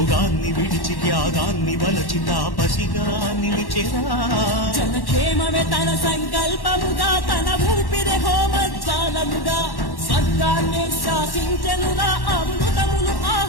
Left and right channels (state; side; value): late; right; 1.1 ms